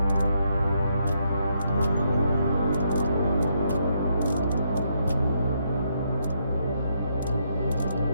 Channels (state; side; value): inverted; both; correlation -0.76